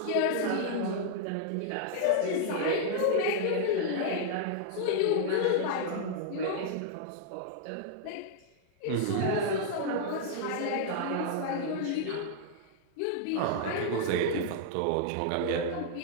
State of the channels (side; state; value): both; different; correlation -0.01